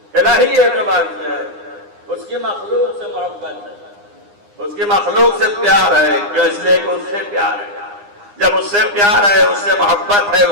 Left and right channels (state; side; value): late; left; 9.8 ms